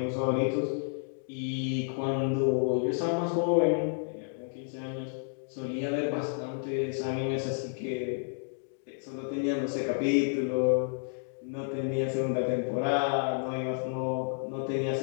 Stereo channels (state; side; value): silent; right; digital silence